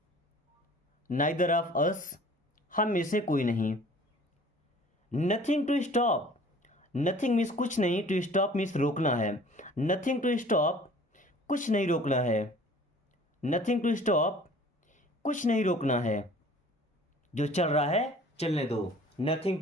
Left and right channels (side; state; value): both; normal; correlation 0.49